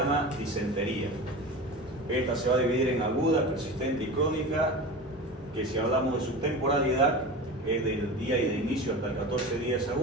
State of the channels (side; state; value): left; noise; rumble, 29 dB below the sound